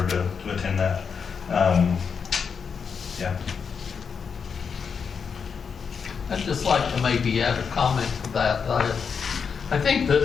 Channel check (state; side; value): quieter; right; 6.1 dB